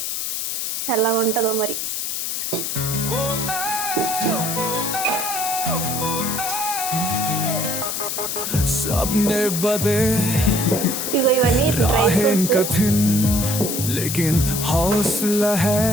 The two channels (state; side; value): noise; left; hiss, 2 dB below the sound